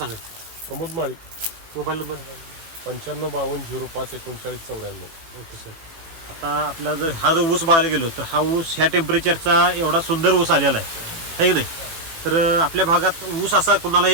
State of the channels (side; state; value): left; late; 18 ms